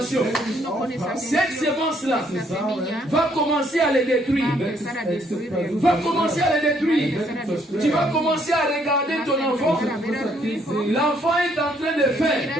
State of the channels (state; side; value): normal; both; correlation 0.68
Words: cette sémence-là va commencer à les détruire. Va commencer à les détruire. Tu vas commencer à regarder ton enfant. L'enfant est en train de faire